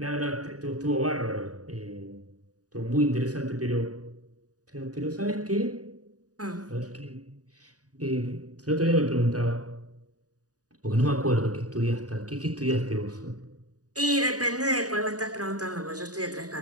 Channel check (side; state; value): left; late; 0.67 ms